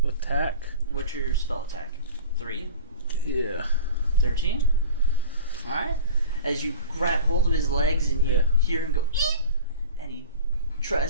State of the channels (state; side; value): inverted; both; correlation -0.36